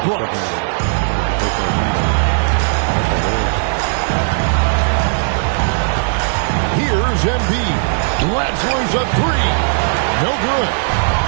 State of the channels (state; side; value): silent; left; 56 dB below the other